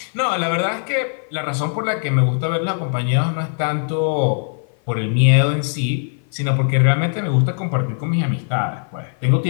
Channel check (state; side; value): silent; right; 56 dB below the other